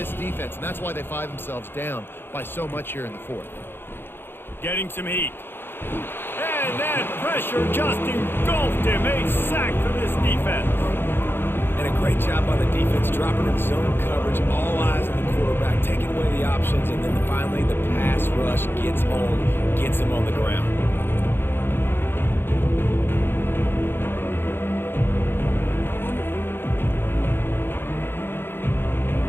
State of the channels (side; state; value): right; late; 0.10 ms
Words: defense, and that's why they find themselves down by so much here in the 4th. Getting some heat. And that pressure just engulfed him. A sack for this defense. And a great job by the defense, dropping in zone coverage, all eyes on the quarterback, taking away the options, and then finally the pass rush gets home, gets him on the ground.